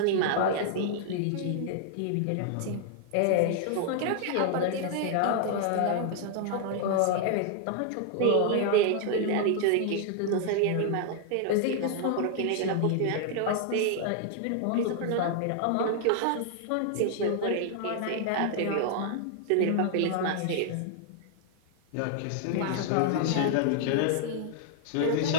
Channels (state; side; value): different; both; correlation 0.00